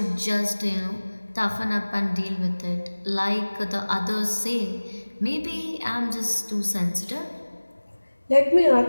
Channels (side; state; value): both; inverted; correlation -1.00